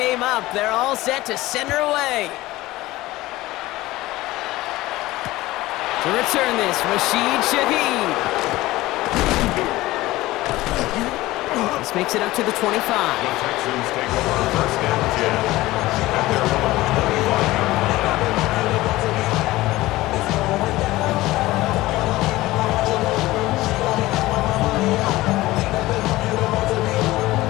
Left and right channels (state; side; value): quieter; right; 18.0 dB